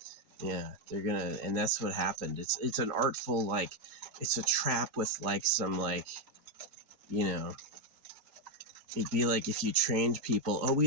Yeah, they're going to, and that's what happened. It's an artful, like, it's a trap with like some like, you know, it'd be like if you trained people,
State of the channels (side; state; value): left; late; 4.6 ms